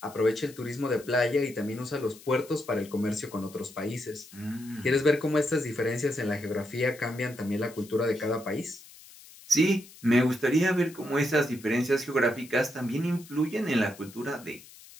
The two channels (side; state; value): left; noise; hiss, 20 dB below the sound